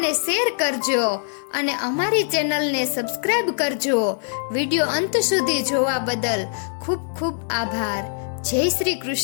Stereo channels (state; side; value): silent; right; digital silence